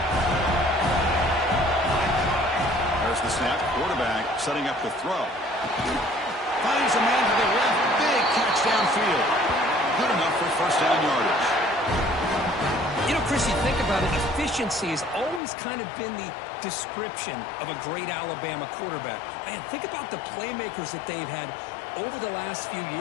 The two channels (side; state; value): right; drops out; at 15.4 s